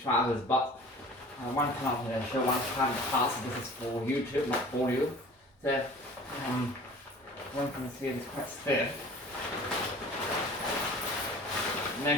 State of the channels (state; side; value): normal; both; correlation 0.44